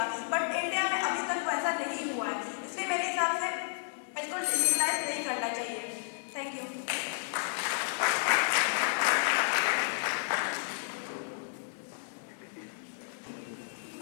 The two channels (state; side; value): silent; right; digital silence